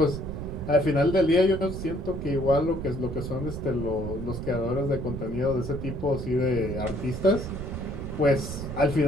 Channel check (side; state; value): right; noise; rumble, 7 dB below the sound